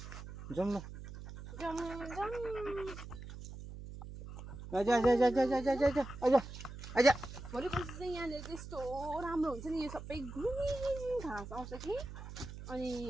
जाउँ ल भोलि पर्सि चाहिँ यहाँनिर चाहिँ यस्तो राम्रो हुन्छ नि यो सबै ग्रिन घाँस आउँछ कि अनि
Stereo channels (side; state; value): right; noise; hum, 11 dB below the sound